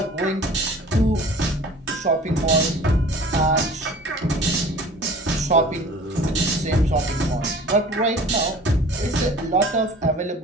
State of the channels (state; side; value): normal; both; correlation 0.45